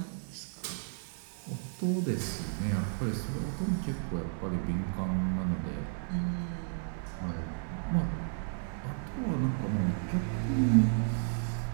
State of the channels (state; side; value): silent; left; 56 dB below the other